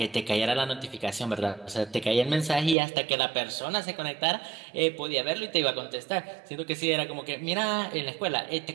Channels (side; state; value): left; drops out; at 2.8 s